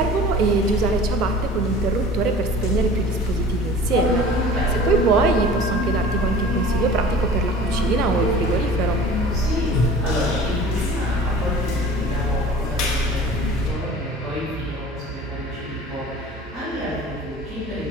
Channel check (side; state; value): both; normal; correlation 0.42